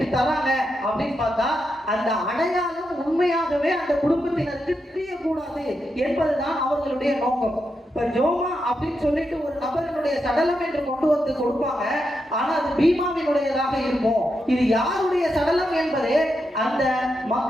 தராங்க அப்படின்னு பார்த்தா அந்த அடையாளம் உண்மையாகவே அந்த குடும்பத்தினருக்கு தெரியக்கூடாது என்பதுதான் அவர்களுடைய நோக்கம். இப்ப ஜோமா அப்படின்னு சொல்லிட்டு ஒரு நபரினுடைய சடலம் என்று கொண்டு வந்து கொடுப்பாங்க, ஆனா அது பீமாவினுடையதாக இருக்கும். இது யாருடைய சடலம் என்பதே அந்த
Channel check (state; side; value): normal; both; correlation 0.85